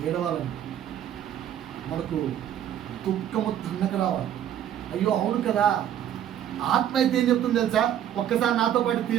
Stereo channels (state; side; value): quieter; left; 10.5 dB